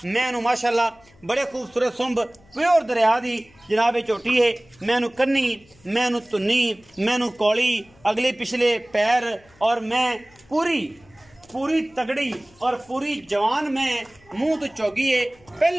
मैं उन्हें माशाल्लाह बड़े खूबसूरत सुंब प्योर दरिया दी जनाब झोटी है। मैं उन्हें कन्नी मैं उन्हें धुन्नी मैं उन्हें कौली अगले पिछले पैर और मैं पूरी तगड़ी और पूरी जवान में मुंह तो चौगी है।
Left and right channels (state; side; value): noise; left; hum, 29 dB below the sound